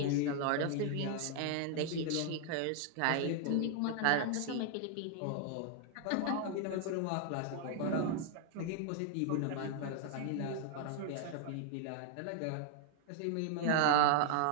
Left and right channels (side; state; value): both; different; correlation 0.00